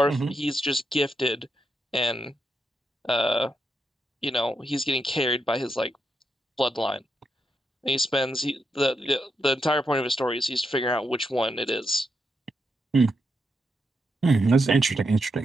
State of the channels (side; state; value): both; normal; correlation 0.83